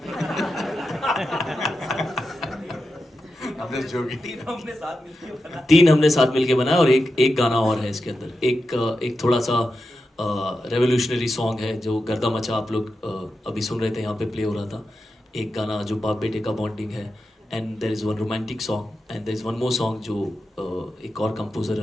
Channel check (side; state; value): both; normal; correlation 0.90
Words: तीन हमने साथ मिलके बनाया और एक गाना और है इसके अंदर। एक थोड़ा सा रेवोल्यूशनरी सॉन्ग है जो गर्दा मचा आप लोग अभी सुन रहे थे, यहाँ पे प्ले हो रहा था। एक गाना जो बाप बेटे का बॉन्डिंग है, and there is one romantic song, and there is one more song जो एक और कंपोजर